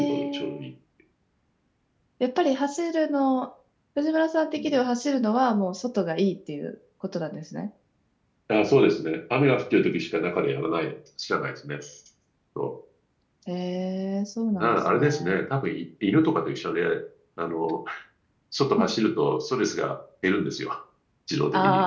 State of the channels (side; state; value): both; identical; correlation 1.00